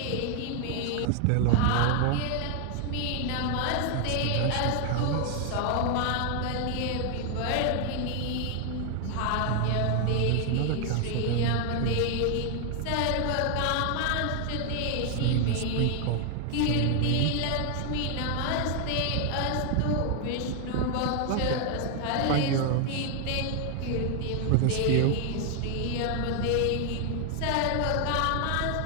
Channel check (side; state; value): both; different; correlation 0.00